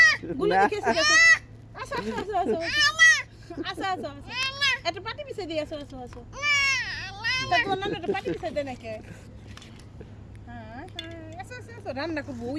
গুলো দেখে আসো আসো আসো আসো আসো আসো আসো আসো একটা পাটি পিছাই দিয়ে আসো আসো আসো তা তোমার নাম একটা পাটি পিছাই দেয় নাকি হ্যাঁ আসো আসো আসো রান্না করবো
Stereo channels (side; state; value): both; identical; correlation 1.00